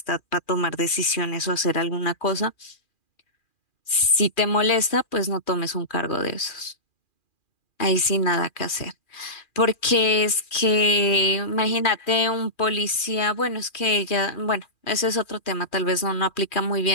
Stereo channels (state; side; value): late; right; 2.4 ms